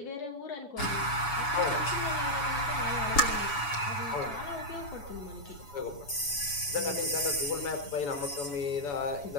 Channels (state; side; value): late; right; 7.0 ms